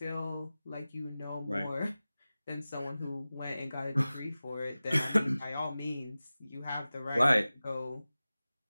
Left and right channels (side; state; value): both; inverted; correlation -0.96